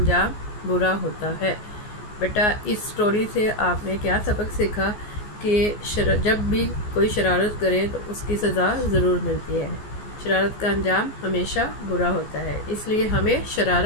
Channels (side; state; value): right; late; 14 ms